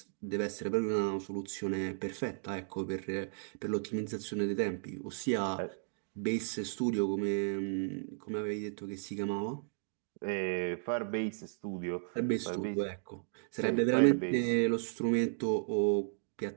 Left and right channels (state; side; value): silent; left; digital silence